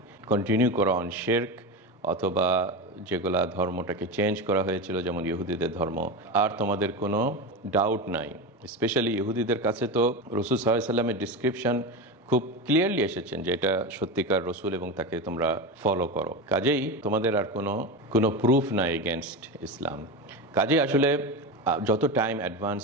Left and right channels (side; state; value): both; normal; correlation 0.21